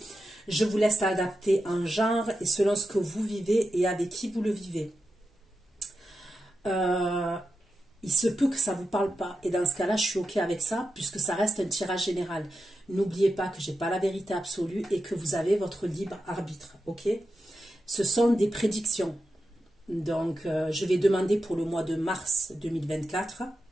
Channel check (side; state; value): both; normal; correlation 0.88